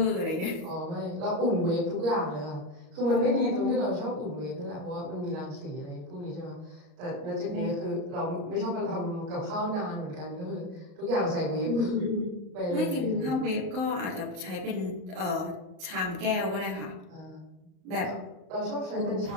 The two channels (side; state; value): left; late; 38 ms